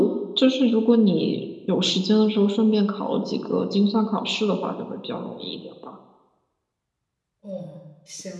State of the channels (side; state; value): both; identical; correlation 1.00